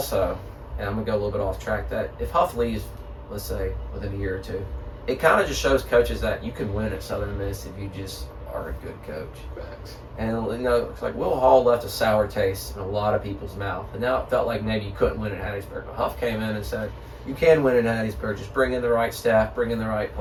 and I'm going to go a little bit off track, that if Huff leaves, let's say, within a year or two, it kind of just shows coaches that you can win at Southern Miss if you just are a good coach. And it's like Will Hall left a sour taste in a lot of people's mouth, and now it felt like maybe you couldn't win at Hattiesburg. But Huff came in and said, "You can win at Hattiesburg. Just bring in the right staff, bring in the right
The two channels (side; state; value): both; identical; correlation 1.00